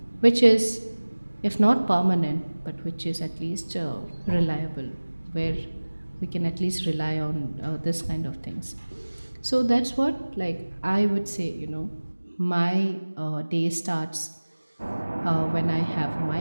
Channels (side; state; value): both; inverted; correlation -1.00